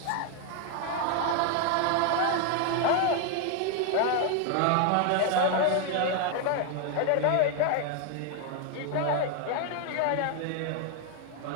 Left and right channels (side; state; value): both; different; correlation 0.01